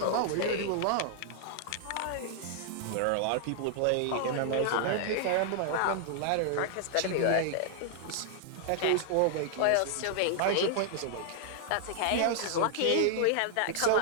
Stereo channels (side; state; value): both; different; correlation 0.00